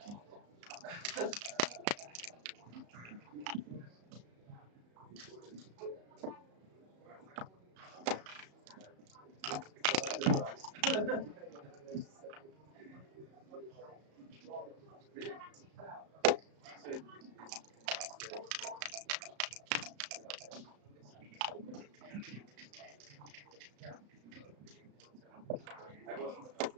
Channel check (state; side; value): late; left; 34 ms